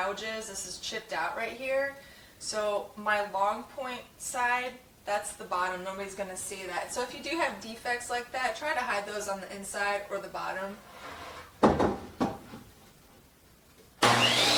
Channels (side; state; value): both; identical; correlation 1.00